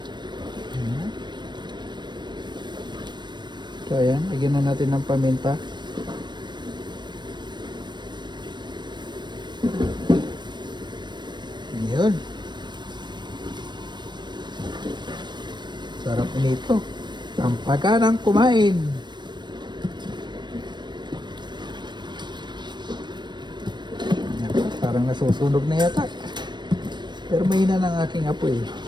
Ayan. So ayan, lagyan na natin ng paminta. Ayan. Sarap nito. Ang pagkanang kumain. Parang nasusunog na yata. Pero mahina ng aking apoy.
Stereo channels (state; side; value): late; left; 0.22 ms